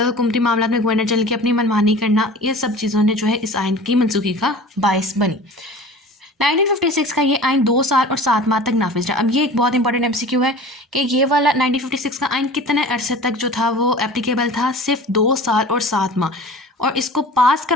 हुकूमती मामला में गवर्नर जनरल की अपनी मनमानी करना, ये सब चीज़ों ने जो है इस आइन की मनसूखी का बायस बनी। 1956 का ये आइन 2 साल और 7 माह तक नाफिज रहा। अब ये एक बहुत इंपॉर्टेंट MCQ है कि ये वाला 1956 का आइन कितने अरसे तक जो था वो एप्लीकेबल था, सिर्फ 2 साल और 7 माह। और इसको पास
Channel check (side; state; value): both; normal; correlation 0.40